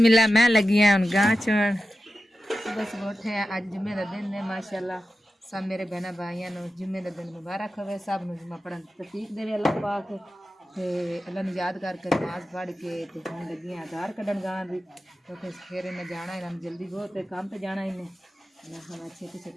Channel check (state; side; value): normal; both; correlation 0.93